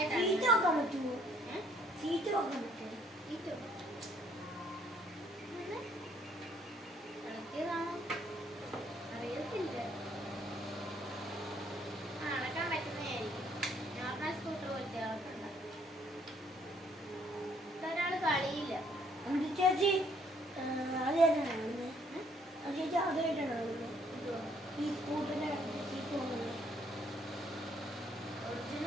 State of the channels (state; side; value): normal; both; correlation 0.66